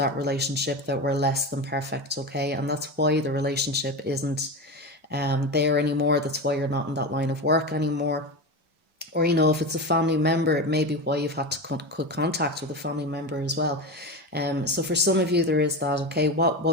relationship that were less than perfect, okay? And that's why the relationship isn't there anymore. That's why you're not in that line of work anymore. Or, you know, if it's a family member, it may be why you've had to cut contact with a family member as well. So for some of you, there is that, okay? What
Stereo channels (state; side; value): normal; both; correlation 0.22